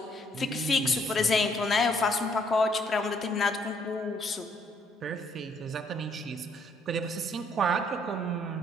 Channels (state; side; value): normal; both; correlation 0.67